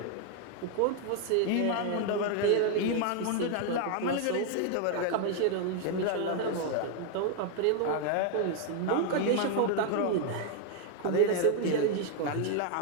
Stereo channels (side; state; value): both; different; correlation 0.00